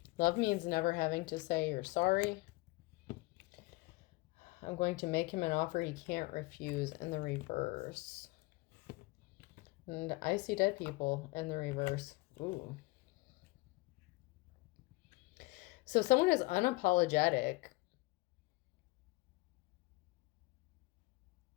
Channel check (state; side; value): quieter; right; 23.0 dB